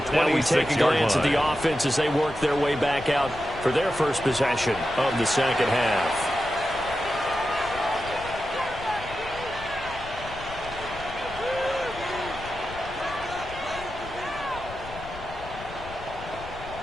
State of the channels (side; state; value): left; noise; rumble, 14 dB below the sound